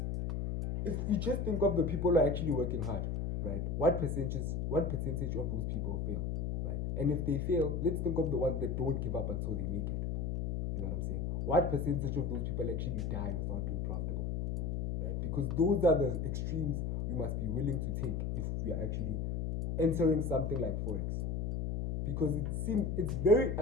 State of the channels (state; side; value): noise; left; hum, 1 dB below the sound